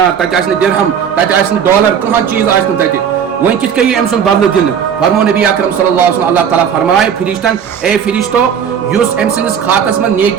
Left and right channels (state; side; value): quieter; left; 7.9 dB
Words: تتہ آسہ درہم تتہ آسہ ڈالر کھانا چیز آسہ تتہ ون کت کئی ام سن بدل دن فرمو نبی اکرم صلی اللہ علیہ وسلم اللہ تعالیٰ فرمائے فرشتن اے فرشتو یس ام سندس خاتس من